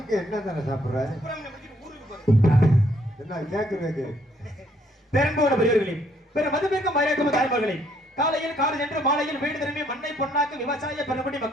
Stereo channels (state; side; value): normal; both; correlation 0.68